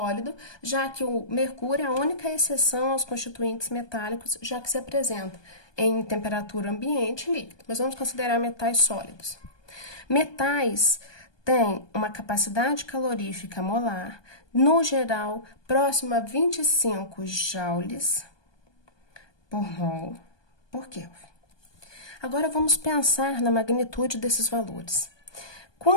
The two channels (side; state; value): right; late; 1.2 ms